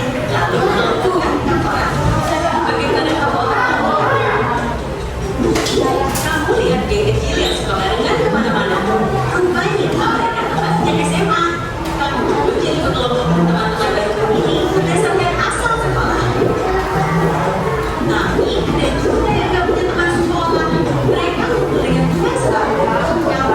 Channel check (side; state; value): both; identical; correlation 1.00